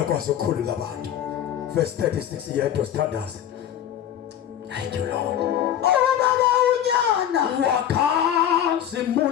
okwazi ukukhulula abantu. Verse 36 yedwa sithandaze. Thank you, Lord. Ubaba unyana.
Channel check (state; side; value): quieter; right; 10.5 dB